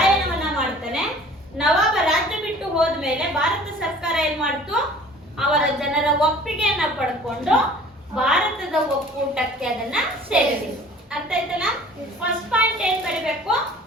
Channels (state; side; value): normal; both; correlation 0.48